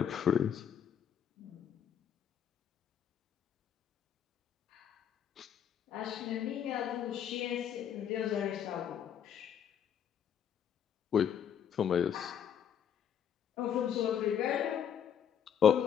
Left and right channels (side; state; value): right; quieter; 8.7 dB